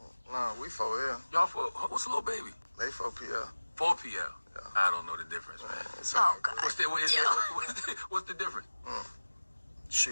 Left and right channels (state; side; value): inverted; both; correlation -1.00